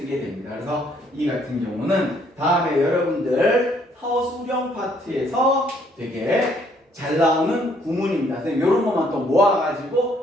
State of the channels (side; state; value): both; normal; correlation 0.66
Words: 됩니다. 그래서 이 같은 경우는 다음에 여러분들 서술형 파트에서 되게 잘 나오는 구문입니다. 이런 것만 또